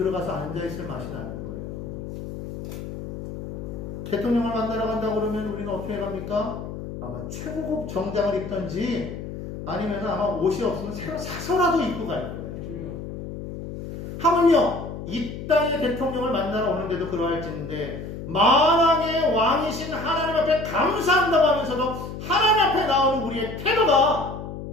앉아있을 맛이 나는 거예요. 대통령을 만나러 간다고 그러면 우리는 어떻게 갑니까? 아마 최고급 정장을 입던지 아니면 아마 옷이 없으면 새로 사서라도 입고 갈 거예요. 하물며 이 땅의 대통령을 만나러 오는데도 그러할지인데 만왕의 왕이신 하나님 앞에 감사한다고 하면서도 하나님 앞에 나오는 우리의 태도가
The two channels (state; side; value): noise; left; hum, 9 dB below the sound